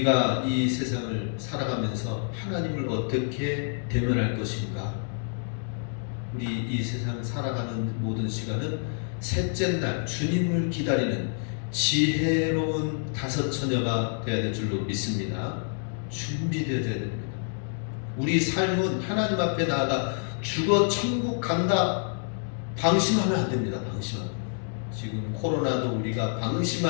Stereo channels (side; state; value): right; silent; digital silence